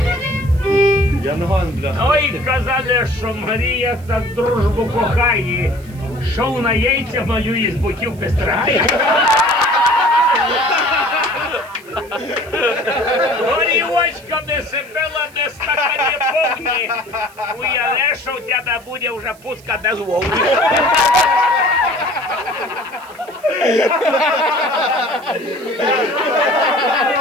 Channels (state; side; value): noise; right; hiss, 25 dB below the sound